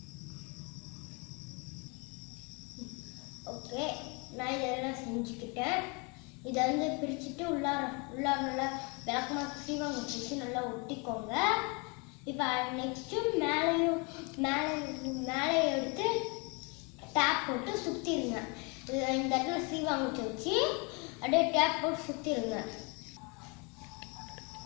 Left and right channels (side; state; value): right; quieter; 31.6 dB